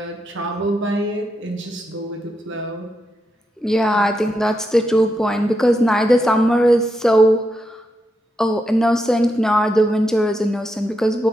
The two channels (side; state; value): both; normal; correlation 0.84